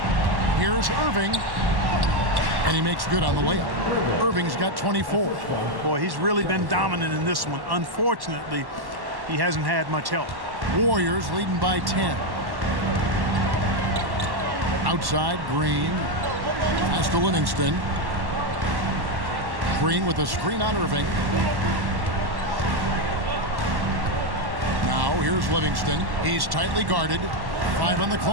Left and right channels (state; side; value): late; left; 1.1 ms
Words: Here's Irving. And he makes good on the layup. Irving's got 24. Boy, he's really been dominant in this one. Unfortunately, he hasn't had much help. Warriors leading by 10. Outside, Green. Pass to Livingston. Green with a screen on Irving. Now here's Livingston. He's tightly guarded. 5 on the